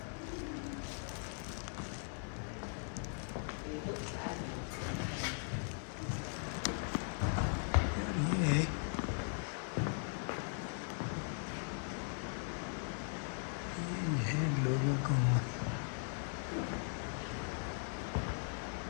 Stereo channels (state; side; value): silent; right; 52 dB below the other